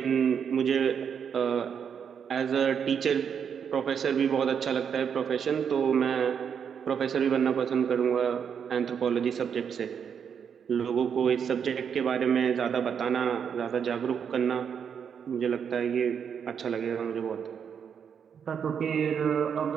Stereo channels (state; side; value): quieter; left; 7.4 dB